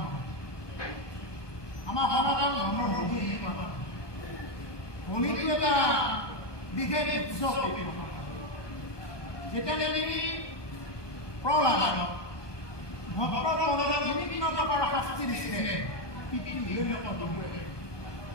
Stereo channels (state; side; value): late; right; 1.2 ms